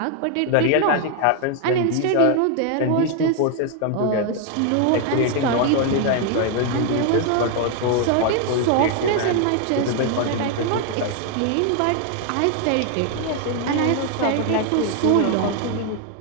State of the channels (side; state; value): both; different; correlation 0.01